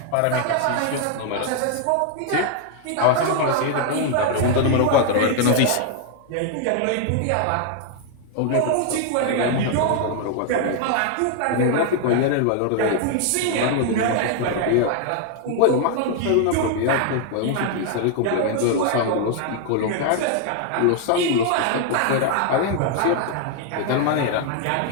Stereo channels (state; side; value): different; both; correlation 0.00